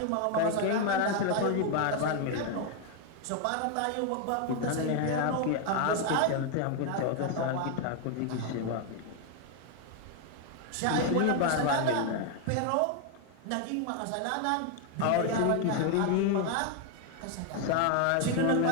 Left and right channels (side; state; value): both; different; correlation 0.01